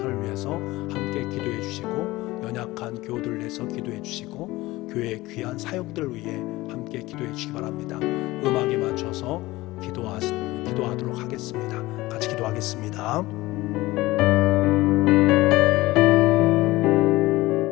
위해서 함께 기도해 주시고, 연약한 교우들을 위해서 기도해 주시고, 교회의 귀한 사역들을 위해 함께 기도해 주시기 바랍니다. 음악에 맞춰서 기도하도록 하겠습니다. 같이 기도하겠습니다.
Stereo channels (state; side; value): quieter; right; 19.1 dB